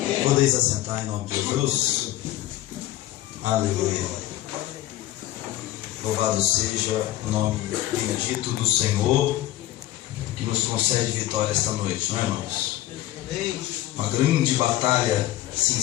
Podeis assentar em nome de Jesus. Aleluia. Louvado seja o nome bendito do Senhor, que nos concede vitória esta noite, não é, irmãos? Uma grande batalha se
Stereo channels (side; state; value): right; quieter; 14.9 dB